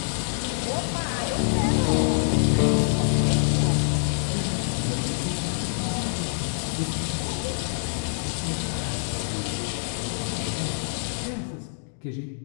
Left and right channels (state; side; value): silent; right; digital silence